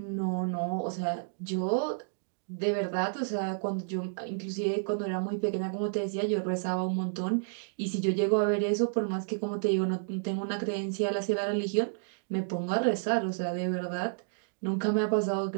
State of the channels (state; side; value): silent; left; digital silence